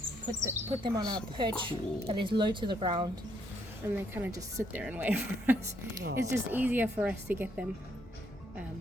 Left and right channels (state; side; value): normal; both; correlation 0.72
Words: Put them on our perch that is low to the ground, and they kind of just sit there and wait for us. It's just easier for us to get them.